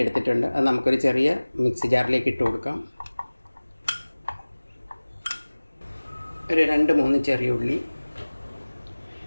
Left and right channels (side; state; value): both; inverted; correlation -1.00